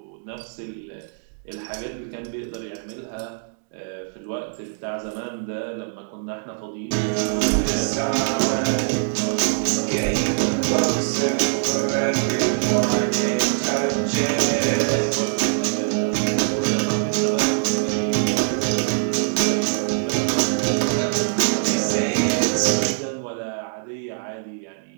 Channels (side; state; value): left; silent; digital silence